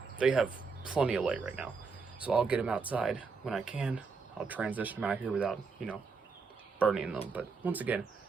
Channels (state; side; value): quieter; left; 4.8 dB